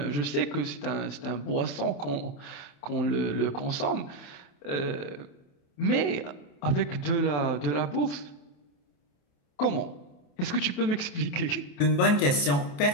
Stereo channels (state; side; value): late; right; 28 ms